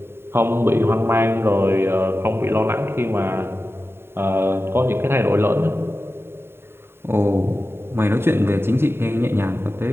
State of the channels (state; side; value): late; left; 0.11 ms